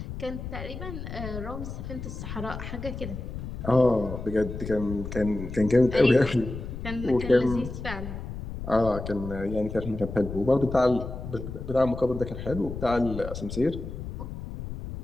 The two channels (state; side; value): noise; left; rumble, 8 dB below the sound